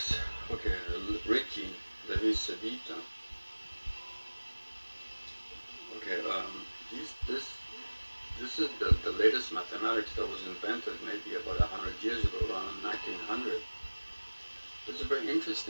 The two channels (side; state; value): both; inverted; correlation -1.00